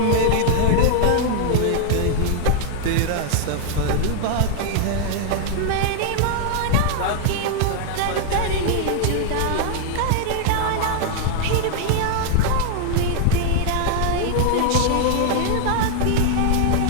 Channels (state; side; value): different; both; correlation -0.01